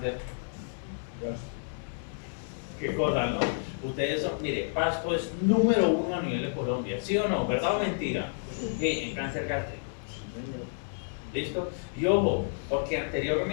¿Qué cosa, no? Ustedes son, mire, Pasto es número 1 a nivel de Colombia, ¿sí o no? ¿Verdad o mentira? Sí, en cáncer gástrico. ¿Listo? Y ojo, porque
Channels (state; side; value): silent; right; digital silence